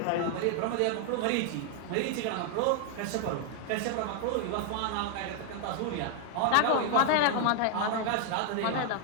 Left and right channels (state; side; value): different; both; correlation 0.00